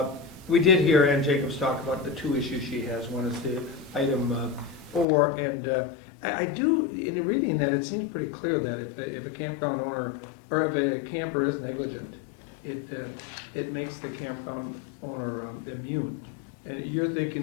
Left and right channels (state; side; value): drops out; right; at 5.1 s